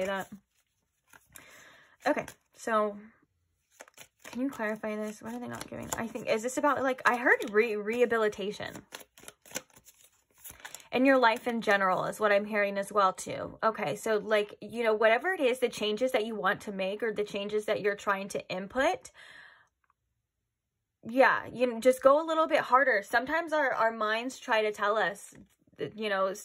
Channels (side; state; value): both; identical; correlation 1.00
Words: that. Okay, so can you clarify this? What are they not giving? I think, is this about, like, I heard rehabilitation. And your life in general is what I'm hearing as well too. Okay, so like, you know, whatever it is, the changes that you want to make or the changes that you're trying to input, yeah, you know, just go a little bit harder. Sometimes our minds try to tell us, you know,